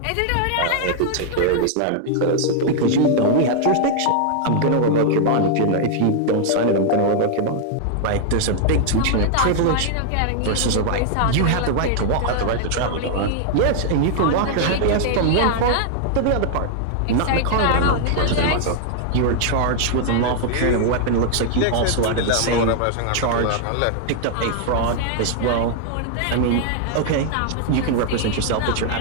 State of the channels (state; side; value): different; both; correlation 0.00